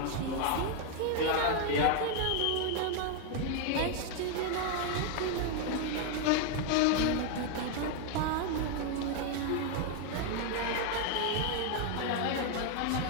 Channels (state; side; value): different; both; correlation 0.01